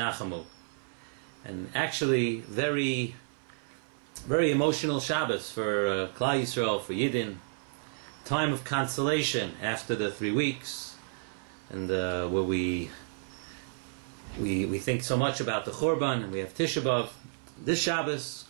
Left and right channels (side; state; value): left; silent; 57 dB below the other